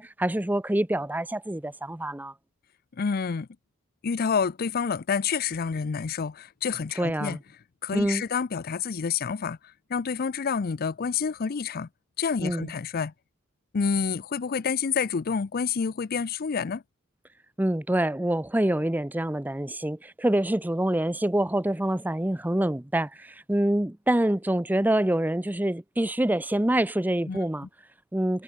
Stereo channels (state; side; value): normal; both; correlation 0.68